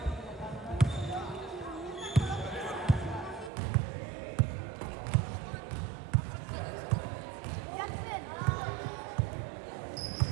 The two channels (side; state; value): left; drops out; at 3.5 s